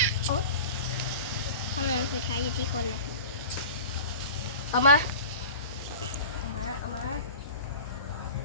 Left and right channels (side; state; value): both; inverted; correlation -0.36